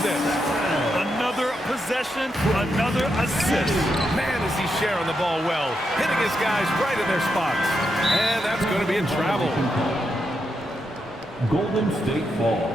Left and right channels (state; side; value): normal; both; correlation 0.83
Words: Another possession, another assist. Man, is he sharing the ball well. Hitting his guys right in their spots. And that's going to be a travel. Golden State ball.